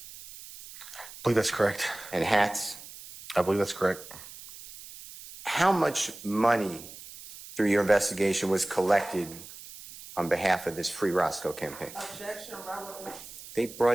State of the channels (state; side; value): noise; right; hiss, 15 dB below the sound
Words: I believe that's correct. And hats? I believe that's correct. How much money through your investigation was collected on behalf of this Free Roscoe campaign? Objection, relevant. They